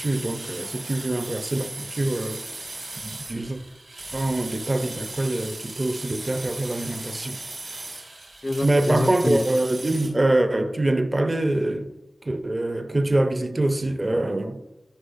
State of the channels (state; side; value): normal; both; correlation 0.98